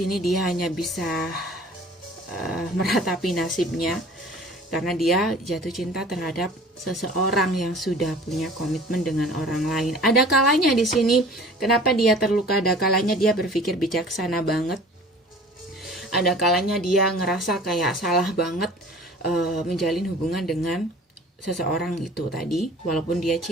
dia hanya bisa meratapi nasibnya karena dia jatuh cinta terhadap seseorang yang sudah punya komitmen dengan orang lain. Ada kalanya di sini kenapa dia terluka, ada kalanya dia berpikir bijaksana banget. Ada kalanya dia ngerasa kayak salah banget menjalin hubungan dengan seseorang itu tadi, walaupun dia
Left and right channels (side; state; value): both; normal; correlation 0.46